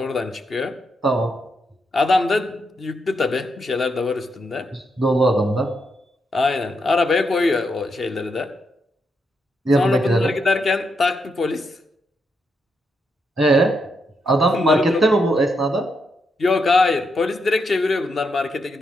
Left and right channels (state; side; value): normal; both; correlation 0.81